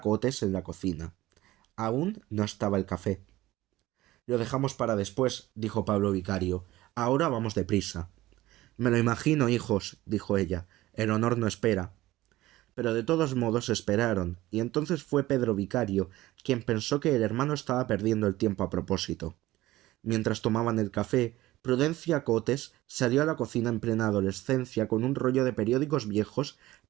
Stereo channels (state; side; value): quieter; left; 16.9 dB